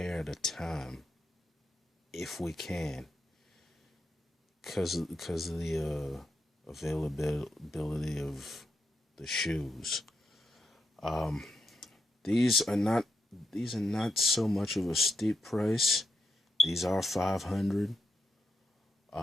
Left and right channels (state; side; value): normal; both; correlation 0.83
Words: at a time, if we can, because of the availability of the shoes. These are not so much of a steep price. These are $500.